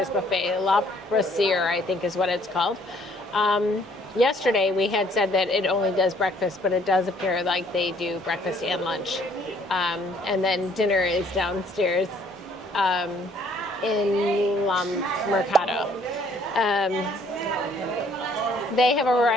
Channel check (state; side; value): normal; both; correlation 0.62